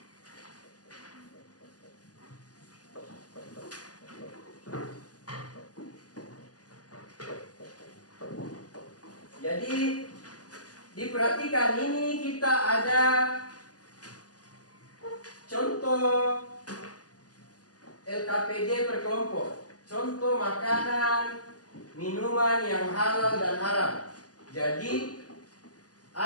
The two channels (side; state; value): right; late; 0.67 ms